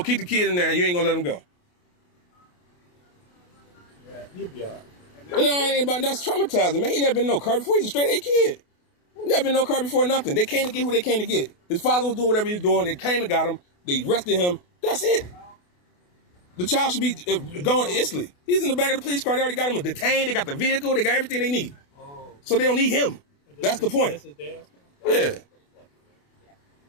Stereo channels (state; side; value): late; right; 28 ms